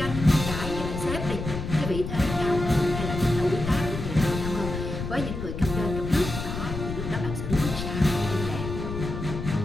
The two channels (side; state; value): left; noise; rumble, 6 dB below the sound